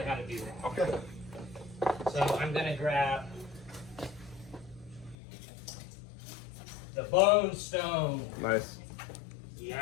how to do that. Okay. So I'm gonna grab the bone stone. Nice.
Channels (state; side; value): drops out; right; at 5.2 s